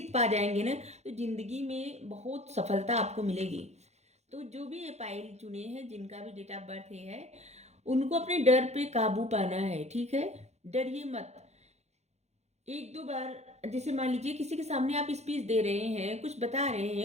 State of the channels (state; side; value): late; left; 0.32 ms